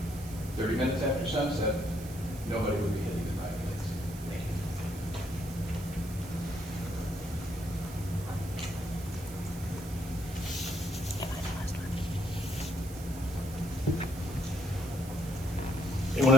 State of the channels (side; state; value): right; noise; hiss, 15 dB below the sound